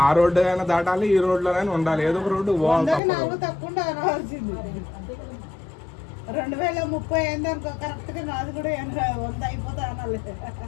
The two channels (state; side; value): drops out; right; at 3.0 s